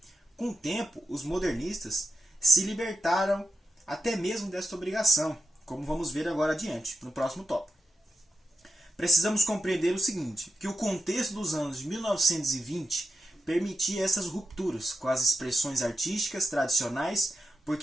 Com o tempo, os modernistas se libertaram até mesmo desta obrigação, como vamos ver agora adiante, no próximo tópico. Precisamos compreender o seguinte, que o contexto dos anos de 1920 permitia essas rupturas com as expressões artísticas tradicionais,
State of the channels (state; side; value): normal; both; correlation 0.87